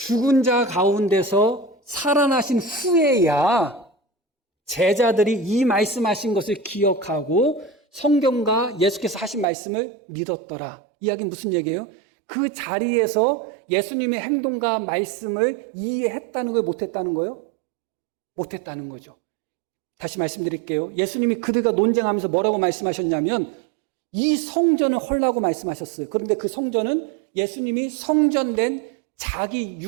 자 가운데서 살아나신 후에야 제자들이 이 말씀하신 것을 기억하고 성경과 예수께서 하신 말씀을 믿었더라. 이야기는 무슨 얘기예요? 그 자리에서 예수님의 행동과 말씀을 이해했다는 거예요? 못했다는 거예요? 못했다는 거죠. 다시 말씀드릴게요. 예수님이 그들과 논쟁하면서 뭐라고 말씀하셨냐면 이 성전을 헐라고 말씀하셨어요. 그런데 그 성전은 예수님이 성전된 자기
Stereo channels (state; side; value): drops out; left; at 9.5 s